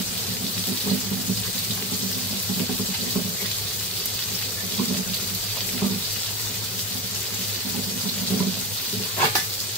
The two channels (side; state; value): both; normal; correlation 0.22